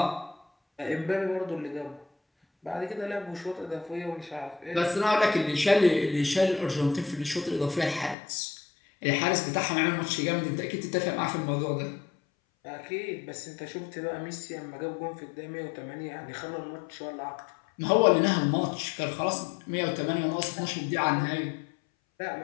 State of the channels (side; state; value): right; drops out; at 8.2 s